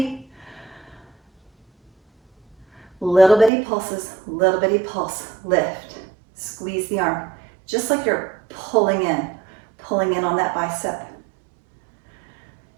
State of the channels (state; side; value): drops out; left; at 3.5 s